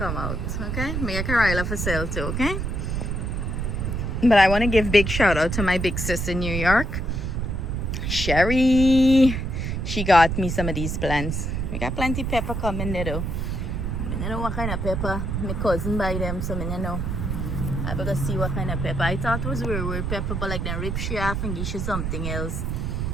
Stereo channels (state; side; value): noise; right; rumble, 2 dB below the sound